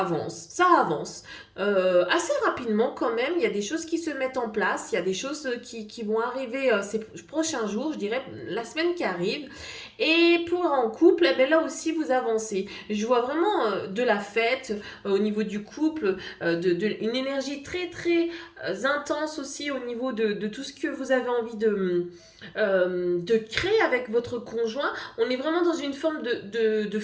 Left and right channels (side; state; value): both; identical; correlation 1.00